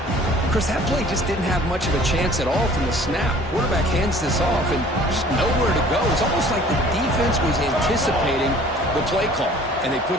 Chris, that play just didn't have much of a chance at all from the snap. Quarterback hands this off and just nowhere to go. It's almost like the defense was anticipating the play call, and they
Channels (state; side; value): normal; both; correlation 0.51